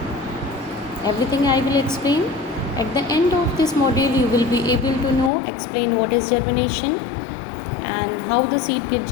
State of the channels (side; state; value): right; drops out; at 5.3 s